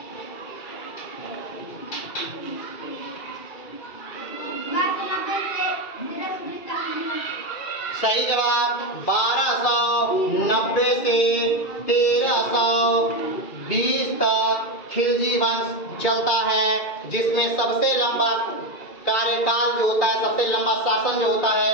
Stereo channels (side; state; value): right; late; 2.3 ms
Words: सही जवाब 1290 से 1320 तक खिलजी वंश चलता है, जिसमें सबसे लंबा कार्यकाल जो होता है, सबसे लंबा शासन जो होता